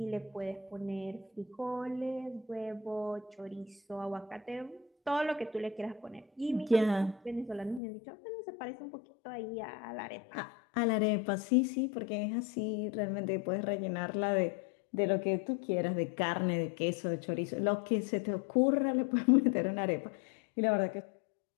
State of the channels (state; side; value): drops out; right; at 7.8 s